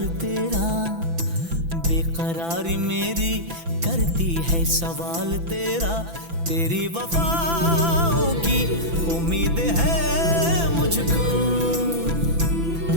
तेरा, बेकरारी मेरी करती है सवाल तेरा। तेरी वफाओं की उम्मीद है मुझको,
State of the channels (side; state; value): left; late; 6.0 ms